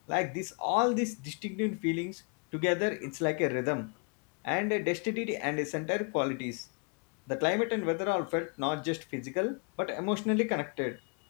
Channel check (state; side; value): quieter; right; 36.0 dB